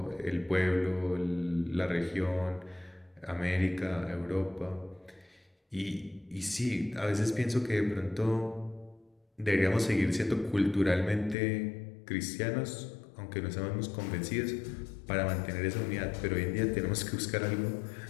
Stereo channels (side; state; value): right; drops out; at 11.4 s